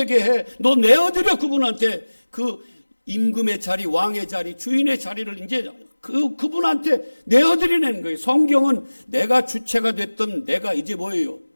해. 너 내어드려. 그분한테 그 임금의 자리, 왕의 자리, 주인의 자리를 이제 그분한테 내어드리는 거예요. 성경은 내가 주체가 됐던 내가 이제 뭐예요?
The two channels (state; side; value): inverted; both; correlation -1.00